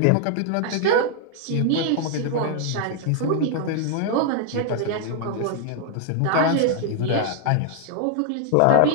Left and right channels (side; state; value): both; different; correlation 0.00